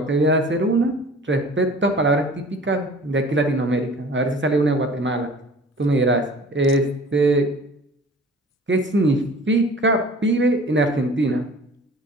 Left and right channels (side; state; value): both; normal; correlation 0.46